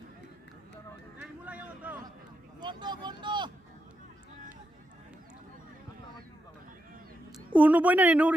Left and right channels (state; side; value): normal; both; correlation 0.84